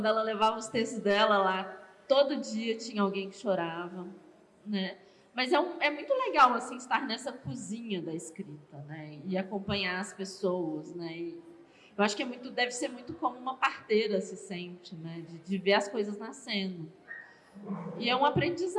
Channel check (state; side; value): identical; both; correlation 1.00